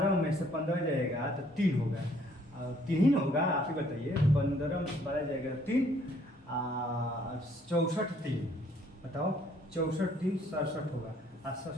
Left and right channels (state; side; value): normal; both; correlation 0.63